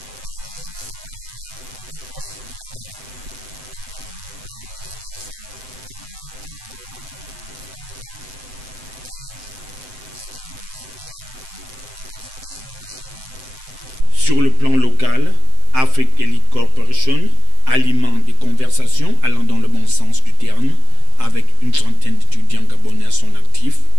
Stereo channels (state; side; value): late; left; 7.8 ms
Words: de maîtriser non seulement l'anglais, mais en plus du mandarin. Donc, du coup, l'étudiant sort en même temps, tout en étant trilingue, ce qui lui ouvre déjà beaucoup d'opportunités sur le marché de l'emploi. Sur le plan local, Afrique Elite Corporation alimente des conversations allant dans le bon sens du terme avec une trentaine d'étudiants gabonais à son actif